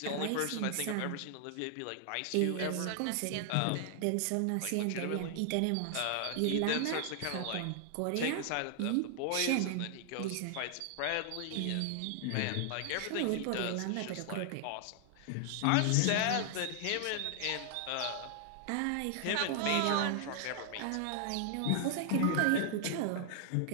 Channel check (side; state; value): both; different; correlation 0.00